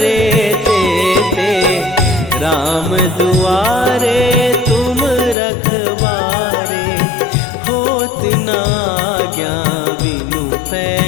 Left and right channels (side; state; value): right; drops out; at 5.4 s